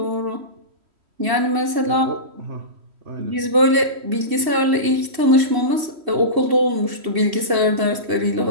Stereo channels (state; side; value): late; left; 2.7 ms